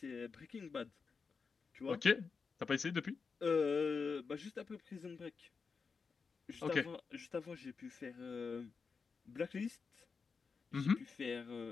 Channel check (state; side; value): quieter; right; 5.1 dB